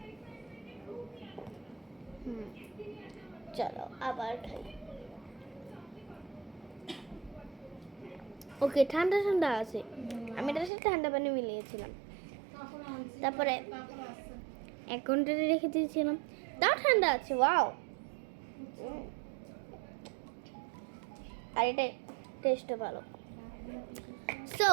চলো আবার খাই। ওকে, ঠান্ডা ঠান্ডা আছে, আমি এটার সাথে ঠান্ডা পানি মিলিয়েছিলাম, তারপরে 1 ঘন্টা রেখে দিয়েছিলাম, তাও ঠান্ডা আছে। ওয়াও, আর এটা টেস্টও ভালো। সো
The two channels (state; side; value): drops out; left; at 10.7 s